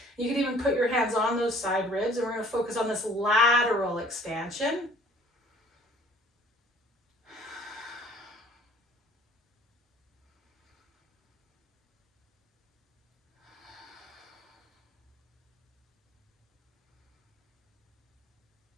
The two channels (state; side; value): normal; both; correlation 0.54